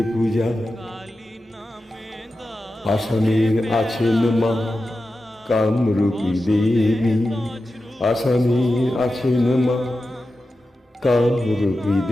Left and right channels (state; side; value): normal; both; correlation 0.92